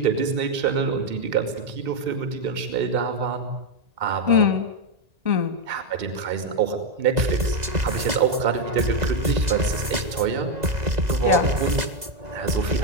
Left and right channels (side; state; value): left; late; 2.0 ms